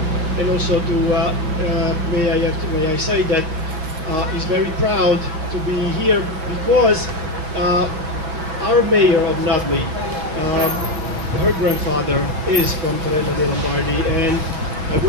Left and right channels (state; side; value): late; left; 6.3 ms